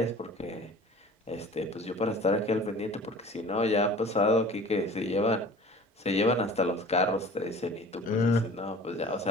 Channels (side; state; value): both; normal; correlation 0.44